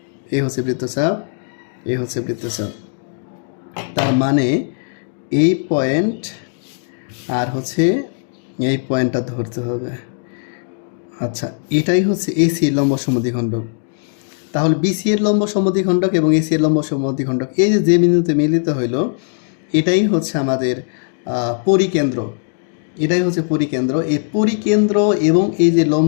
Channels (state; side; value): silent; right; digital silence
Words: এই হচ্ছে বৃত্তচাপ, এই হচ্ছে বৃত্তচাপ। তার মানে এই পয়েন্ট আর হচ্ছে এই পয়েন্টটা ধরতে হবে। আচ্ছা, এটাই হচ্ছে এসি এর লম্ব সমদ্বিখণ্ডক। তাহলে বিসি এর লম্ব সমদ্বিখণ্ডক এবং এসি এর লম্ব সমদ্বিখণ্ডক, এই যে বিন্দুতে মিলিত হইল, এটাই হচ্ছে আমাদের পরিকেন্দ্র, এটাই হচ্ছে পরিকেন্দ্র। এই পরিকেন্দ্র এবং এই যে